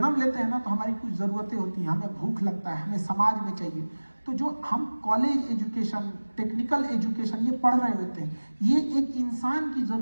लेते हैं ना, तो हमारी कुछ जरूरतें होती हैं, हमें भूख लगता है, हमें समाज में चाहिए। तो जो हम कॉलेज एजुकेशन, टेक्निकल एजुकेशन ये पढ़ रहे होते हैं, ये एक इंसान की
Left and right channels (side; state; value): both; inverted; correlation -1.00